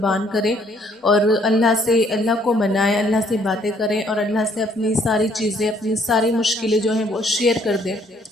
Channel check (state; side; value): normal; both; correlation 0.65